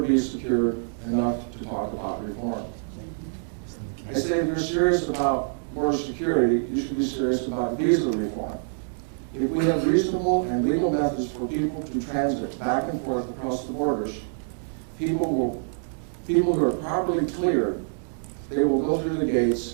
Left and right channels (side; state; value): left; silent; digital silence